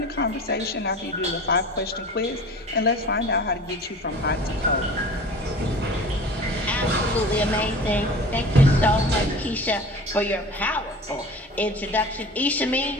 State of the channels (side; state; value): both; normal; correlation 0.39